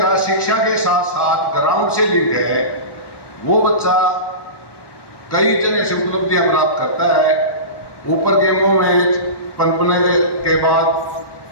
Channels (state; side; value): late; right; 1.1 ms